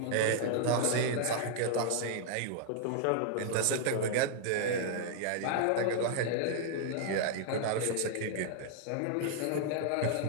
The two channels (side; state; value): both; different; correlation -0.01